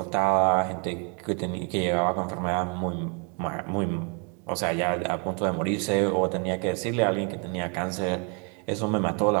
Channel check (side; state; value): left; quieter; 36.7 dB